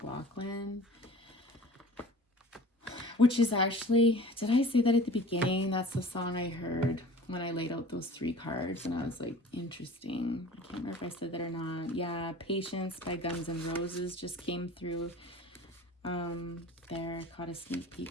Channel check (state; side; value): normal; both; correlation 0.42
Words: Which is actually, did I say that at the beginning? That's the song I heard when I laid out those 3 cards, and I was like, interesting. I can't remember if I said that or not. Yeah, Patience by Guns N' Roses just came through there. Caught a sneak